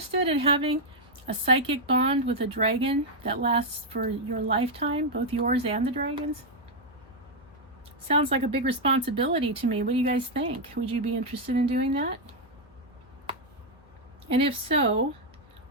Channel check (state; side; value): normal; both; correlation -0.01